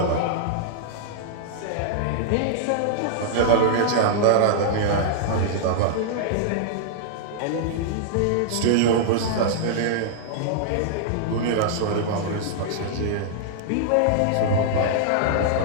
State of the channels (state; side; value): different; both; correlation -0.01